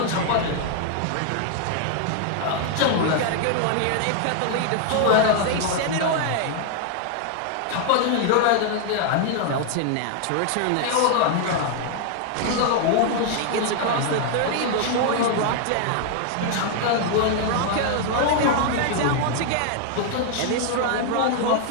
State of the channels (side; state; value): both; different; correlation 0.00